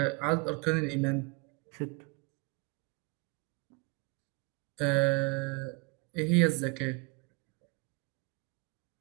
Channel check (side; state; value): left; quieter; 29.1 dB